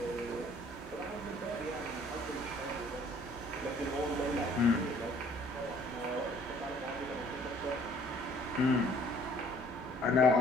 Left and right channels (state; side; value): normal; both; correlation 0.57